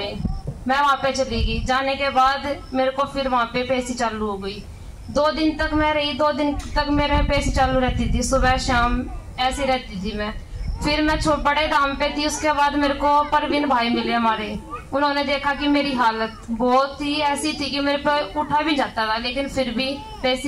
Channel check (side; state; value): both; identical; correlation 1.00